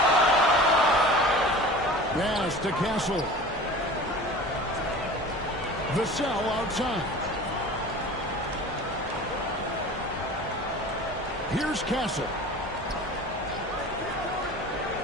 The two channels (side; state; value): both; normal; correlation 0.39